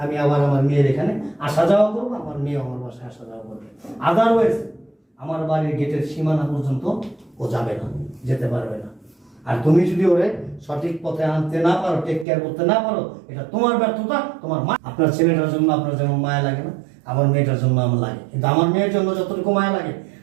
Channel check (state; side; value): drops out; left; at 12.2 s